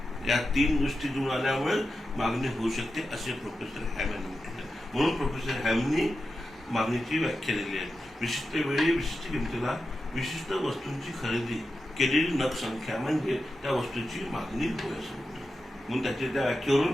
या 3 गोष्टी जुळून आल्यामुळे मागणी होऊ शकते, असे प्रोफेसर हॅम यांनी म्हटले. म्हणून प्रोफेसर हॅमनी मागणीची व्याख्या दिली आहे. विशिष्ट वेळी विशिष्ट किमतीला विशिष्ट वस्तूंची खरेदी केलेली नग संख्या म्हणजे त्या वस्तूची मागणी होय, असं म्हणतो. म्हणून त्या व्याख्येवरून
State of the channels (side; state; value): both; normal; correlation 0.90